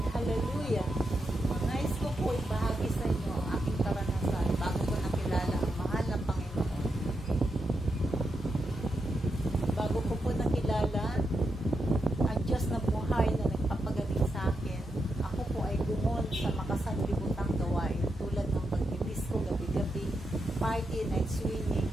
Hallelujah! Nais ko po ibahagi sa inyo ang aking karanasan bago ko nakilala ang mahal na Panginoon. Bago ko po nakilala ang Diyos na buhay na nagpapagaling sa akin, ako po ay gumon sa makasanlibutang gawain tulad ng pagbibisko gabi-gabi, party, night swimming,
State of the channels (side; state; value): both; normal; correlation 0.85